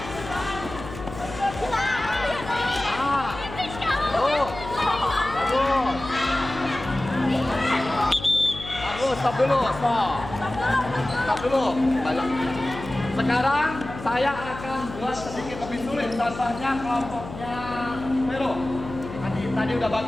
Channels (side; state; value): left; noise; hum, 11 dB below the sound